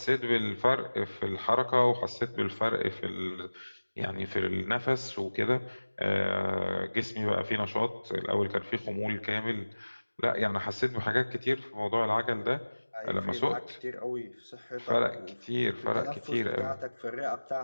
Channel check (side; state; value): both; inverted; correlation -1.00